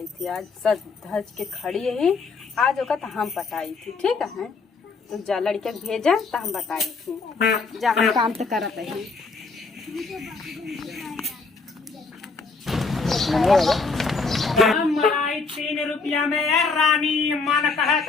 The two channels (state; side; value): quieter; right; 4.3 dB